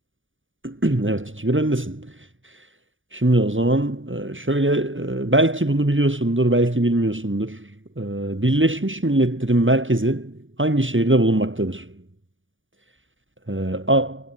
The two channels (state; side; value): late; left; 0.57 ms